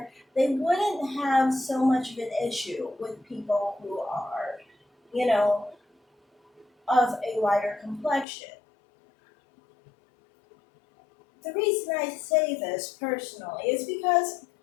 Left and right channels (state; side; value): drops out; right; at 8.2 s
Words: they wouldn't have so much of an issue with people who are, you know, of a lighter complexion. The reason I say this personally is because,